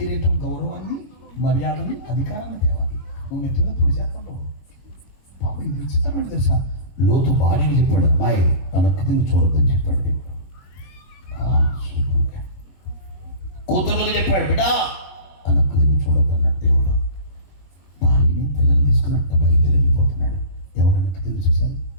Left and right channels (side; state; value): right; late; 22 ms